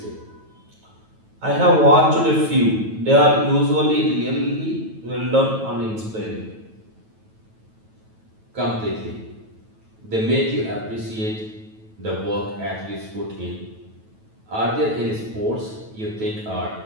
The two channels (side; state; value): left; late; 9.2 ms